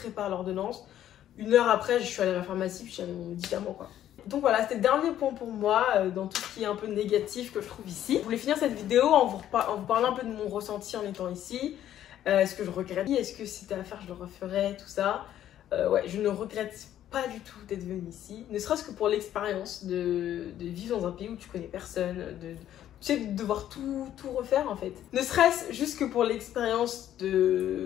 l'ordonnance, 1 heure après, je suis allée à la pharmacie puis j'avais mon médicament, quoi. Donc voilà, c'était le dernier point pour moi dans tout ce qui est un peu négatif que je trouve ici. Je voulais finir cette vidéo en vous parlant un peu de mon ressenti en étant ici. Est-ce que je regrette? Est-ce que si c'était à faire, je le referais, tout ça. Ouais, je ne regrette pas du tout d'être venue ici. Ne serait-ce que pour l'expérience de vivre dans un pays où tu connais personne, tu sais, de devoir tout refaire en fait. Ne serait-ce juste que pour l'expérience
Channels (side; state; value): right; quieter; 11.6 dB